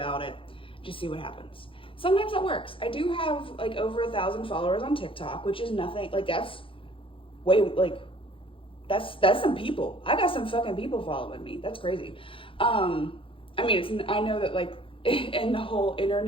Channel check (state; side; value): late; right; 0.26 ms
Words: it. Just see what happens. Sometimes that works. I do have like over 1,000 followers on TikTok, which is nothing, like that's way, like, that's some people. I got some fucking people following me. That's crazy. I mean, I know that like in the whole